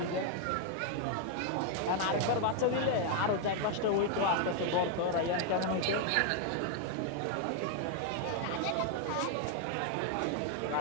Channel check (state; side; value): different; both; correlation 0.00